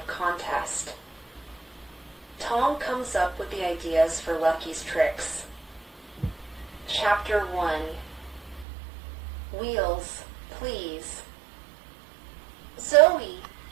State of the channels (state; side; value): drops out; left; at 8.7 s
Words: contest. Tom comes up with the ideas for Lucky's tricks. Chapter 1. Wheels, please. Zoe,